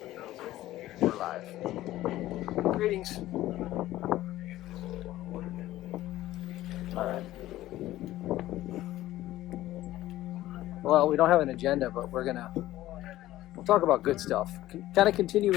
We're live. Greetings. All right. Well, we don't have an agenda, but we're gonna we'll talk about good stuff. Kind of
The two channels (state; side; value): quieter; right; 15.2 dB